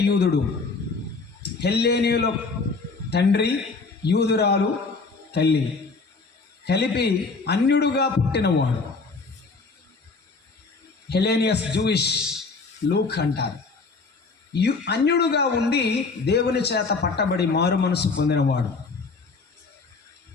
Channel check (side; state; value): right; quieter; 4.2 dB